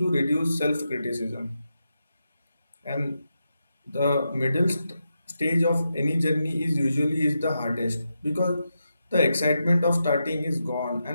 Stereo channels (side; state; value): both; inverted; correlation -0.86